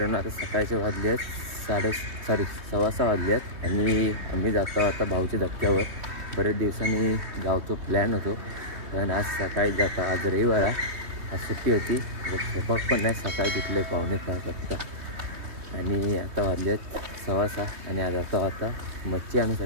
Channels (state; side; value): late; left; 3.2 ms